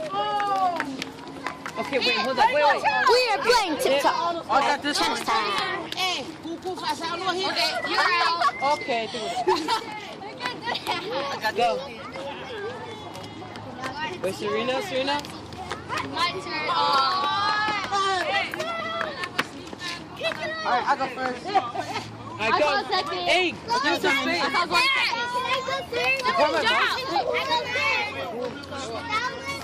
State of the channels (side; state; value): both; identical; correlation 1.00